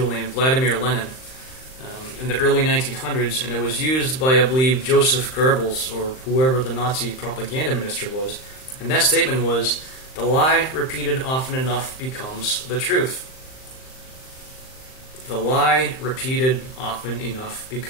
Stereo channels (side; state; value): right; late; 39 ms